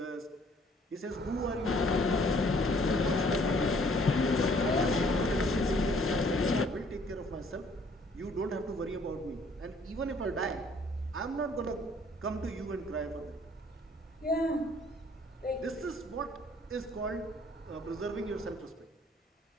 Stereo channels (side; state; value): both; normal; correlation 0.60